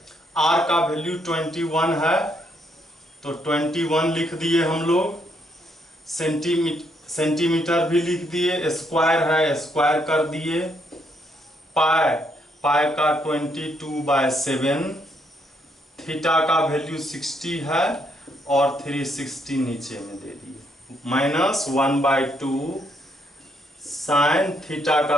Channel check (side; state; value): both; normal; correlation 0.73